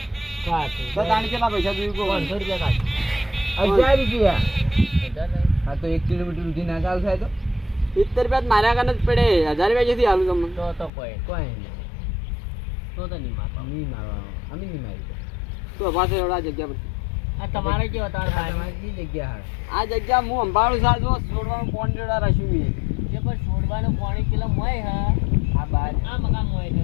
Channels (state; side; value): drops out; right; at 10.9 s